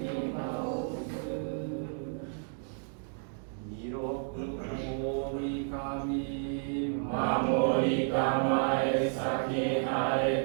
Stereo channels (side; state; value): left; silent; 57 dB below the other